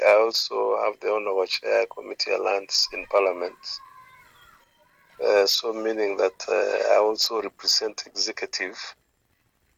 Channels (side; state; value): both; identical; correlation 1.00